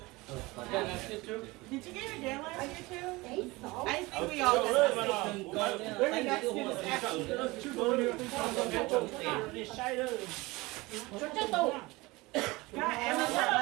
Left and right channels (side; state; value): left; quieter; 22.2 dB